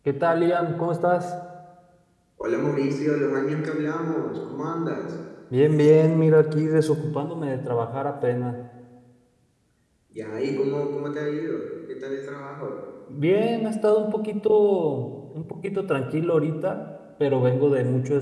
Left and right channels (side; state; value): both; identical; correlation 1.00